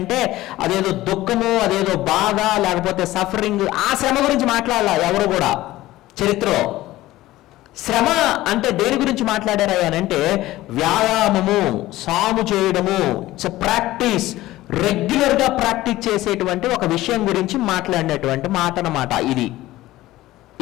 అదేదో దుఃఖము, అదేదో బాధ, లేకపోతే సఫరింగ్, ఆ శ్రమ గురించి మాట్లాడాల ఎవరు కూడా చరిత్రలో. శ్రమ అంటే దేని గురించి మాట్లాడారా అంటే వ్యాయామము, సాము చేయడము, ఇట్స్ ప్రాక్టీస్, రెగ్యులర్గా ప్రాక్టీస్ చేసేటువంటి ఒక విషయం గురించి మాట్లాడినటువంటి మాట అన్నమాట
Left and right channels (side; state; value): right; quieter; 16.6 dB